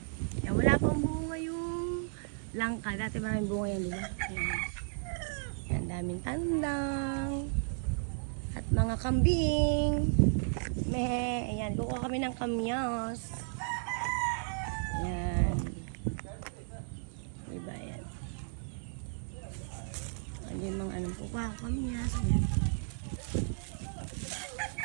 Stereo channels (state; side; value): silent; left; 55 dB below the other